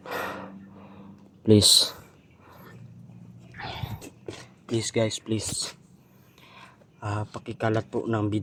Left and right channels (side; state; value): both; identical; correlation 1.00